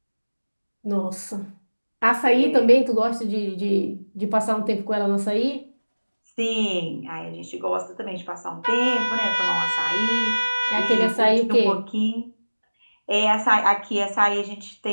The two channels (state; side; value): inverted; both; correlation -1.00